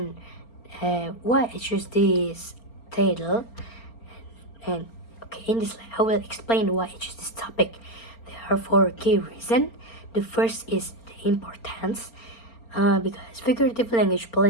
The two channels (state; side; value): late; right; 4.3 ms